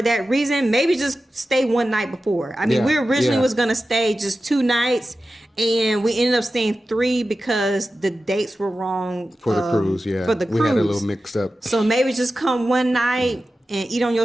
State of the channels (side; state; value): both; normal; correlation 0.93